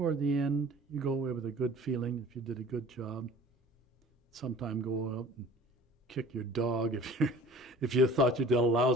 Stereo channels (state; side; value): normal; both; correlation 0.46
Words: the end, you go away with a good feeling if you did a good job. Sometime go out and kick your dog if you thought you did a